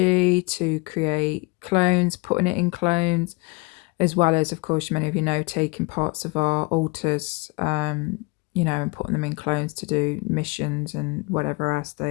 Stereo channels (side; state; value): right; quieter; 26.9 dB